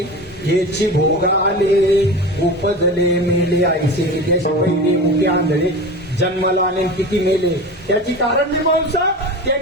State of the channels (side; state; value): both; normal; correlation 0.30